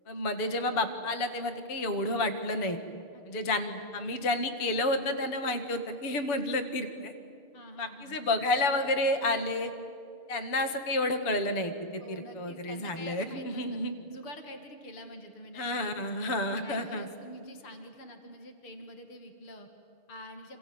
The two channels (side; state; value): right; late; 6.9 ms